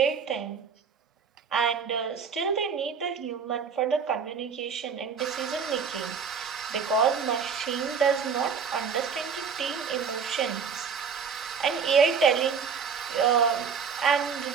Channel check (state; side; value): quieter; left; 6.2 dB